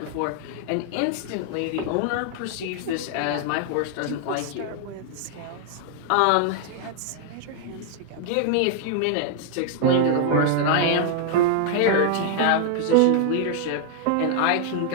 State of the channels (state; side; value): different; both; correlation 0.00